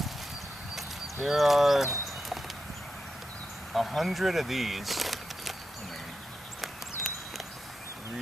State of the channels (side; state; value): both; normal; correlation 0.88